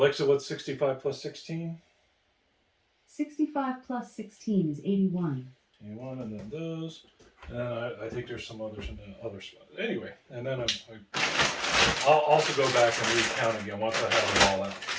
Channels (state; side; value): identical; both; correlation 1.00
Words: what's 65 plus 16? 65 plus 16 is 81. 81, and then those. And then I think there's some others in the other spot. Anyway, and then I'll also go back and recount again once I have them all out.